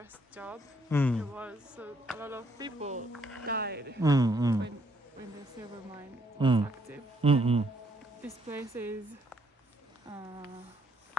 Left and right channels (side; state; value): both; normal; correlation 0.69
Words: job. Mm. It was so a lot of people died Mm. when the silver mine Mm. was active. Mm. This place is